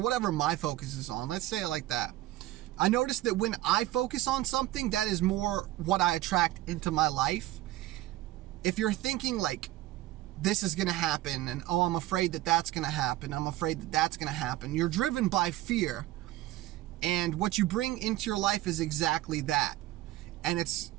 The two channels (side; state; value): left; quieter; 16.0 dB